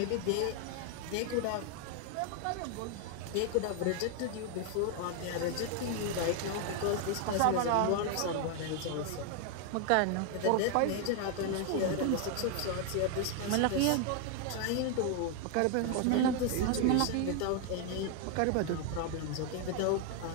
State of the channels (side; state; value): both; different; correlation 0.01